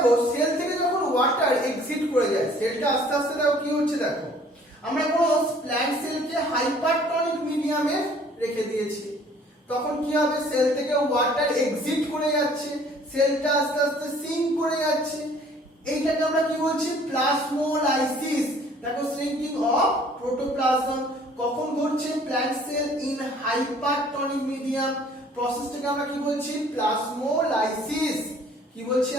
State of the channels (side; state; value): both; normal; correlation 0.55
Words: সেল থেকে যখন ওয়াটার এক্সিট করে যায়, সেলটা আস্তে আস্তে দেখো কি হচ্ছে, দেখো আমরা কোনো প্ল্যান্ট সেলকে হাইপারটনিক মিডিয়ামে রেখে দিয়েছি, তখন কি হবে, সেল থেকে ওয়াটার এক্সিট করে যাচ্ছে, সেলটা আস্তে আস্তে সিঙ্ক করে যাচ্ছে, এইটাকে আমরা কি বলছি, প্লাজমোলাইসিস। দেখো শ্রিঙ্কিং অফ প্রোটোপ্লাজম কখন ঘটছে, plant cell in hypertonic medium, প্রসেসটাকে আমরা কি বলছি, প্লাজমোলাইসিস। কি বলছি